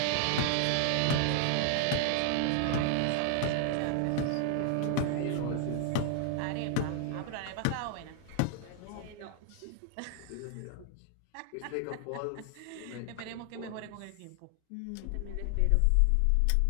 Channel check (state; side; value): different; both; correlation 0.00